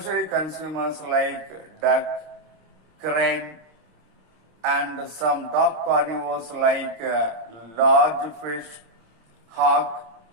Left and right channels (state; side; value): late; left; 26 ms